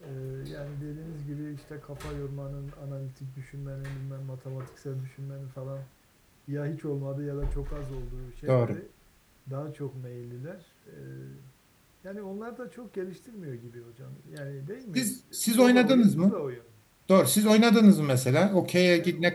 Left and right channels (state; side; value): identical; both; correlation 1.00